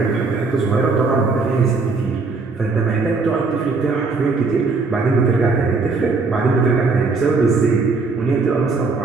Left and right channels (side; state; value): left; quieter; 4.1 dB